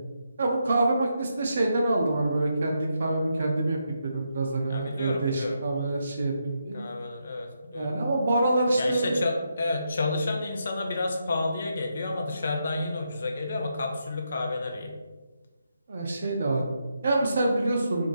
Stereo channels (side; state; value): both; inverted; correlation -0.81